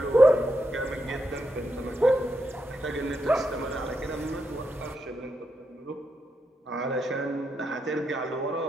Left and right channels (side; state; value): both; normal; correlation 0.83